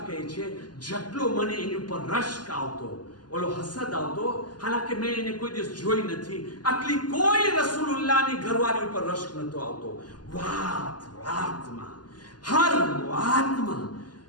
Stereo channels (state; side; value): late; right; 0.70 ms